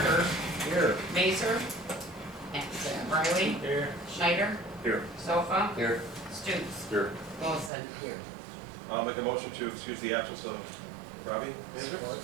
Here. Mazer. Absent. Riley. Here. Schneider. Here. Sofa. Here. Stoops. Here. Wilson. Here. I'll make a motion to excuse the absence of Robbie.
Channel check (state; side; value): drops out; left; at 7.7 s